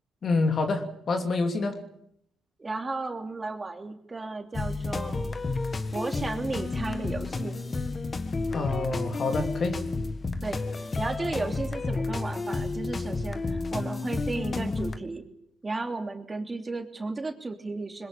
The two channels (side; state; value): both; normal; correlation 0.89